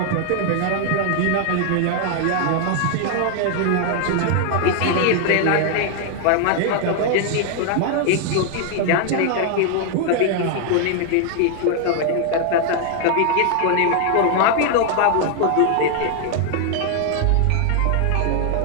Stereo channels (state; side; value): different; both; correlation 0.00